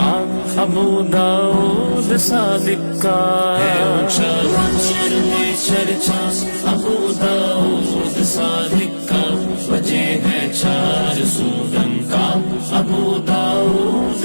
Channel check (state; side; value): inverted; both; correlation -1.00